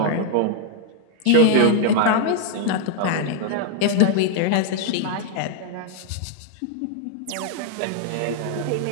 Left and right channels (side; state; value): both; different; correlation 0.00